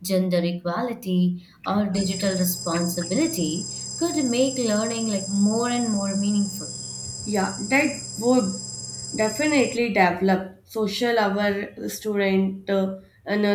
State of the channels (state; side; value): identical; both; correlation 1.00